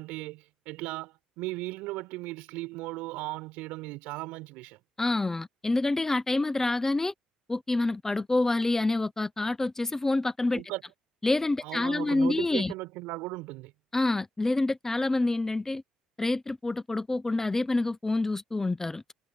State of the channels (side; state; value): both; normal; correlation 0.92